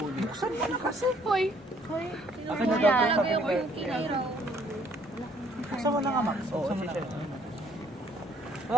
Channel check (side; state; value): both; normal; correlation 0.63